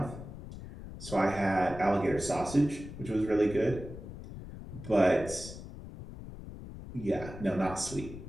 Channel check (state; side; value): noise; left; rumble, 12 dB below the sound